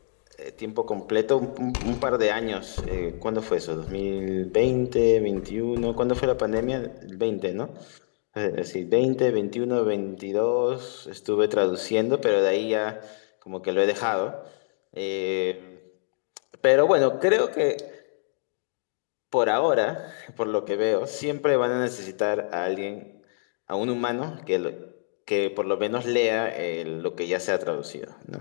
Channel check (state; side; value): silent; right; digital silence